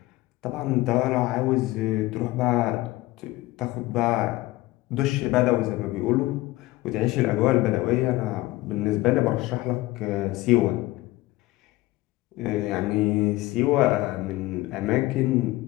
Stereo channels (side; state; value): right; quieter; 18.8 dB